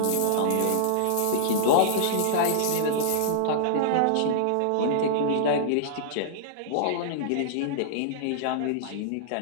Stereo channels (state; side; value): different; both; correlation -0.02